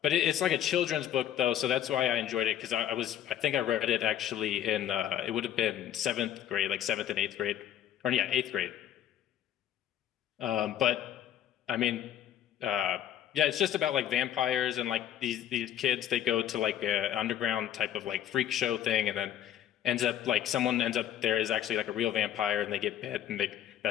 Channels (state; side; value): quieter; right; 10.9 dB